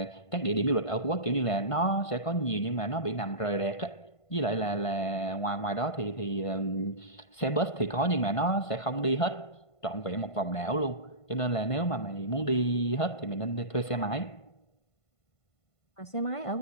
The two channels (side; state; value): right; late; 1.5 ms